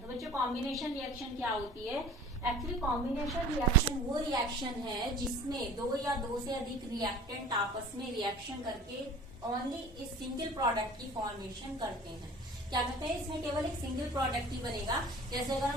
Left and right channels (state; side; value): normal; both; correlation 0.44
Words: बच्चों, कॉम्बिनेशन रिएक्शन क्या होती है? एक्चुअली कॉम्बिनेशन रिएक्शन वो रिएक्शन है जिसमें दो या दो से अधिक रिएक्टेंट आपस में रिएक्शन करके ओनली इस सिंगल प्रोडक्ट की फॉर्मेशन करते हैं। क्या कहते हैं? इसमें केवल एक सिंगल प्रोडक्ट ही बनेगा। जैसे अगर